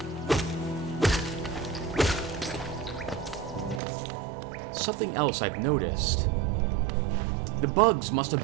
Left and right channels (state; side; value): drops out; left; at 3.8 s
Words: Something else I've noticed. The bugs must have